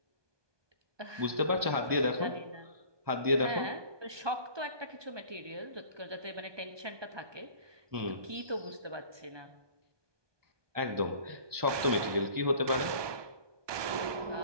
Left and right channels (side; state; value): left; late; 1.2 ms